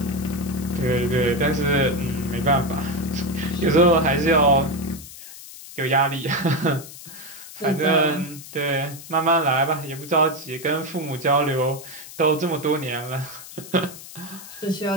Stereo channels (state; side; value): noise; left; hiss, 15 dB below the sound